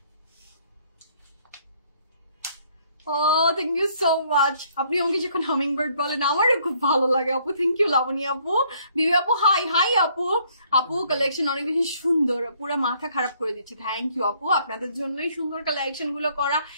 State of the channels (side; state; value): both; inverted; correlation -0.64